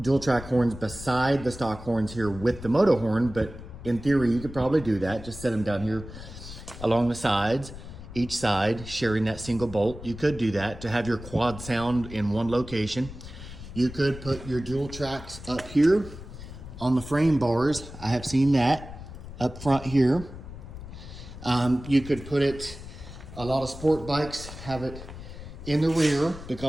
track horns beside the stock horns here with the Motohorn, but in theory you could probably do that. Just set them down here along the sides, each side sharing that single bolt. You could do that to have your quad sound in one location. You could put your dual tracks up here on the frame bars. I have seen that up front here. You could put it, a lot of sport bikes have it in the rear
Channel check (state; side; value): noise; left; rumble, 13 dB below the sound